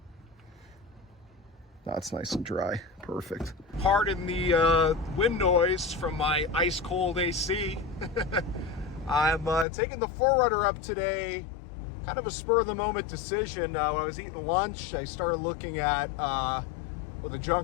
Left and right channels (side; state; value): right; drops out; at 9.7 s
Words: That's nice and dry. Perfect. Pardon the wind noise from my ice cold AC. I'm taking the 4Runner up today. Kind of a spur of the moment decision. When I was eating lunch, I started looking at what the